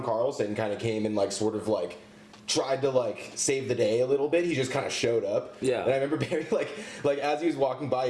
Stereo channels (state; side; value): identical; both; correlation 1.00